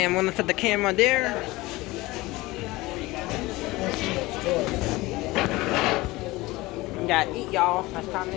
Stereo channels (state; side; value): quieter; right; 20.4 dB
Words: I'm gonna set the camera there. We gotta eat, y'all. It's time to